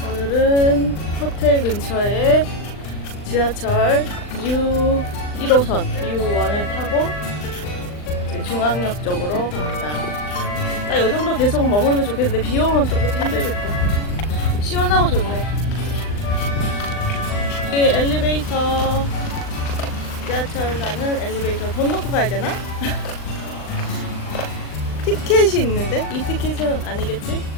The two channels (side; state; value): right; late; 39 ms